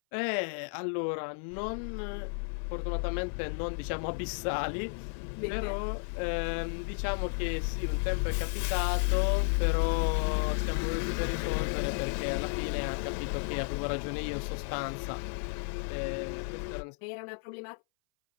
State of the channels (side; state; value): right; silent; 56 dB below the other